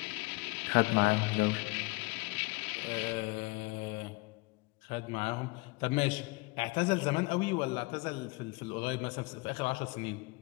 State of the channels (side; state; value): right; quieter; 26.0 dB